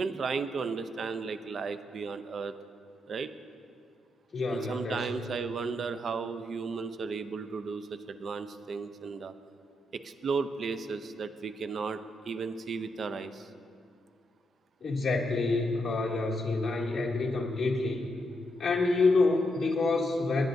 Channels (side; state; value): both; normal; correlation 0.81